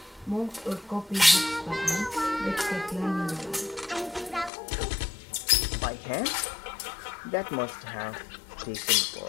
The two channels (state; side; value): drops out; right; at 4.5 s